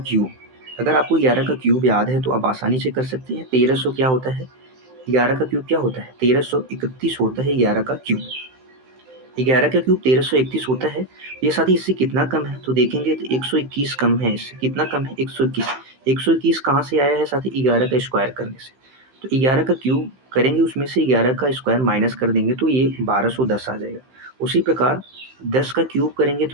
अगर आपको 11 का क्यूब याद है तो आप आसानी से कर सकते हैं। 1300 क्या होता है, 11 का क्यूब क्या होता है, 1331 होता है 11 का क्यूब। 11 का क्यूब 1331 होता है। ये साथी इससे कितना कम है, तो देखेंगे तो 121 कम है। इससे कितना कम है, 121। 121 कहाँ से आया है साथी, 11 का स्क्वायर करने से। तो 11 का क्यूब करेंगे, उसमें से 11 का स्क्वायर माइनस कर देंगे, तो ये 1210 आ जाएगा। उसी प्रकार 10 का क्यूब करेंगे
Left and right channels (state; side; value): late; left; 15 ms